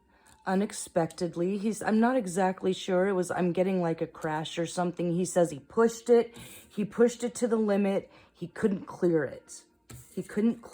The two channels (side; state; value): both; identical; correlation 1.00